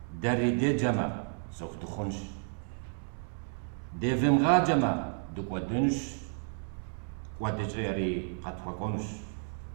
داري دي جمع سوف تخنش ديفم غاجمة دوك ودنش ودجيري قد فخنش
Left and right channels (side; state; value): left; silent; 56 dB below the other